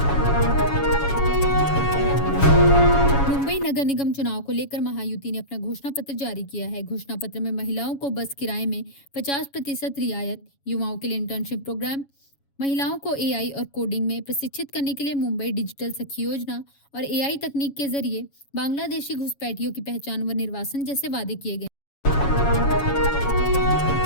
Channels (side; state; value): right; late; 7.2 ms